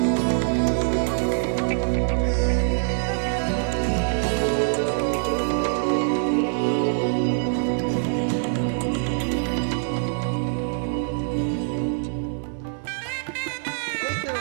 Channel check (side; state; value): left; silent; digital silence